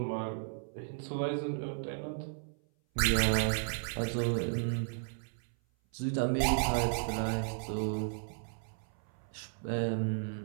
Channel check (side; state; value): left; silent; 55 dB below the other